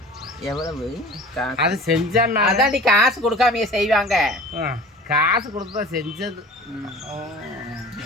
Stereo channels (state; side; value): normal; both; correlation 0.41